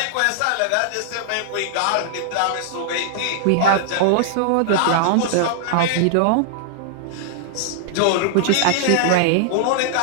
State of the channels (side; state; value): both; different; correlation -0.01